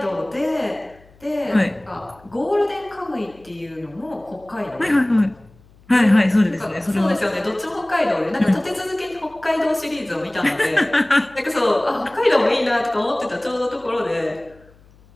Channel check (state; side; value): noise; left; hum, 28 dB below the sound